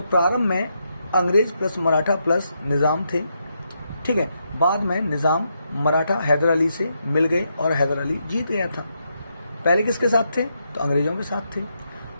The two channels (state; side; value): inverted; both; correlation -0.81